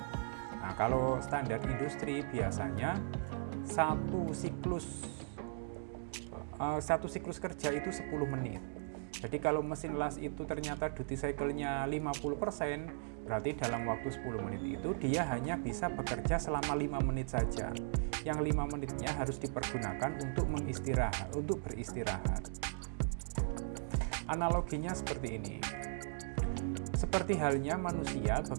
Nah, kalau standar industri biasanya satu siklus kerja itu 10 menit. Jadi kalau mesin las itu ternyata duty cycle-nya 50%, berarti dalam waktu 10 menit itu dia hanya bisa bekerja selama 5 menit saja. Yang 5 menitnya harus dipergunakan untuk beristirahat. Analoginya seperti ini. Seperti halnya manusia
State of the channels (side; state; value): left; silent; digital silence